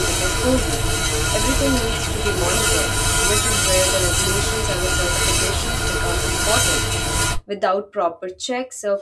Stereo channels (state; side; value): identical; both; correlation 1.00